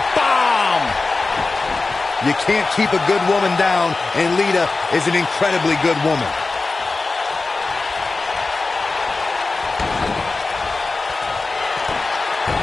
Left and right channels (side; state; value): right; quieter; 3.7 dB